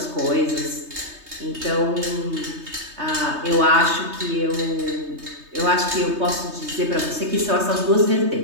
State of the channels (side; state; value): left; late; 3.2 ms